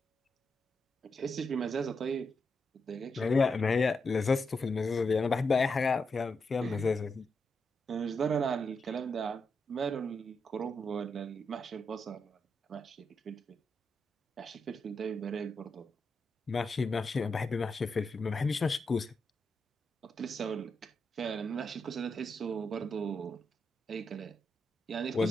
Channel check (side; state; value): both; normal; correlation 0.84